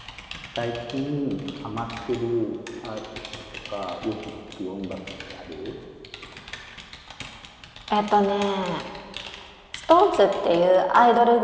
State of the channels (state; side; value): identical; both; correlation 1.00